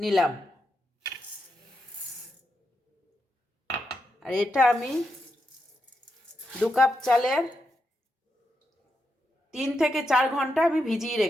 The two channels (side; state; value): both; normal; correlation 0.84